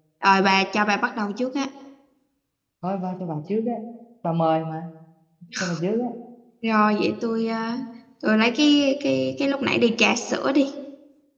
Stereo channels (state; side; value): identical; both; correlation 1.00